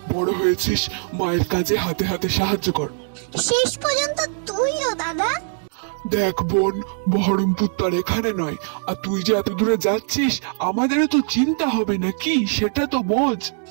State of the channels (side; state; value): left; silent; 64 dB below the other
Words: বড় হয়েছিস, মায়ের কাজে হাতে হাতে সাহায্য কর। শেষ পর্যন্ত তুইও দাদা? দেখ বোন, বহরমপুর তার এখানে নয়, আর তুই যে এত দূরে যাচ্ছিস আমাদেরও তো চিন্তা হবে নাকি, সেটা তো বোঝ।